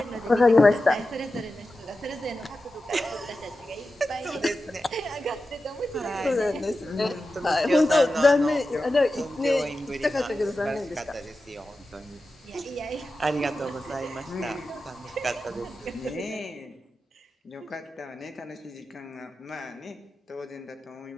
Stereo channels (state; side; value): normal; both; correlation 0.93